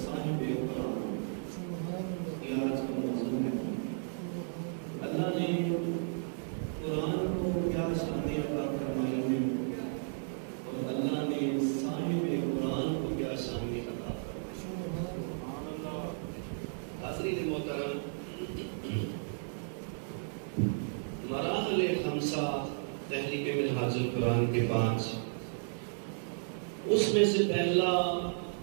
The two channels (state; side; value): silent; left; digital silence